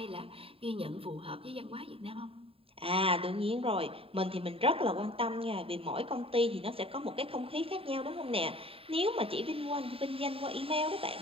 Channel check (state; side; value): late; left; 0.27 ms